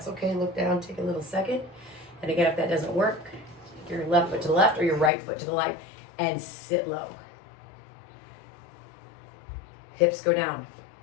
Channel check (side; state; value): right; drops out; at 5.1 s